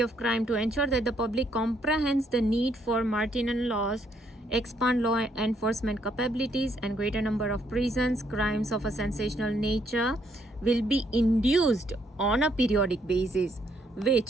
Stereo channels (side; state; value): both; normal; correlation 0.71